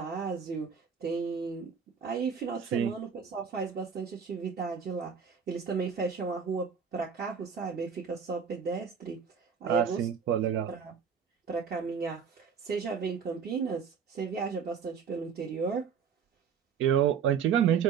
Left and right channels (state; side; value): quieter; left; 6.8 dB